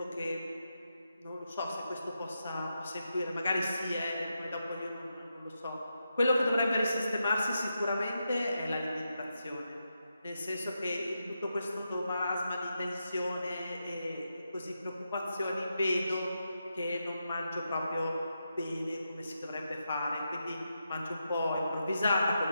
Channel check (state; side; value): inverted; both; correlation -0.86